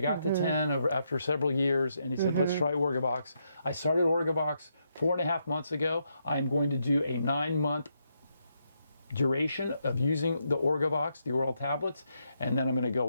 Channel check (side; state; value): both; inverted; correlation -0.80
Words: got to 10 after several years. And he said, let's try Orgovyx. I started Orgovyx 4.5 months ago. I'm going to do a 9-month duration of using the Orgovyx, the oral tablets. And then I'm going to